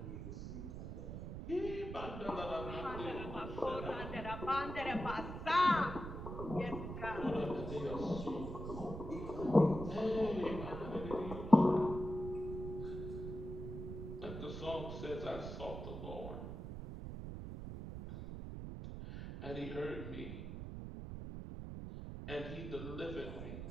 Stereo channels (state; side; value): noise; right; rumble, 7 dB below the sound